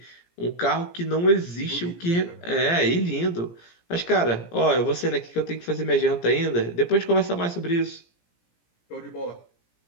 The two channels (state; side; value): late; right; 17 ms